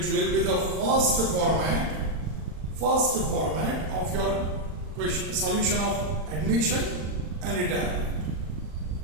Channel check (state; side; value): late; left; 39 ms